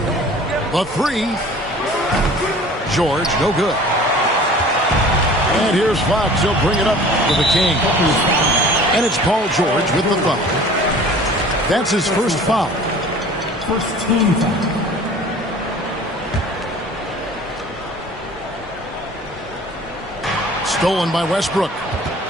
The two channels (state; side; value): normal; both; correlation 0.46